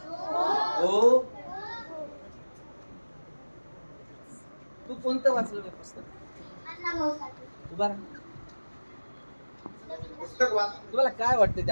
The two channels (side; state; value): both; inverted; correlation -1.00